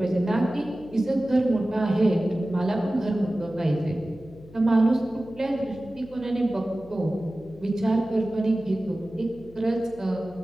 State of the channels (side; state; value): left; noise; hum, 21 dB below the sound